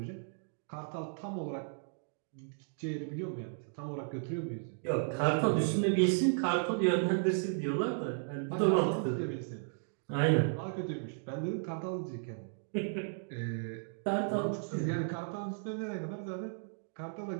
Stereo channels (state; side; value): silent; left; digital silence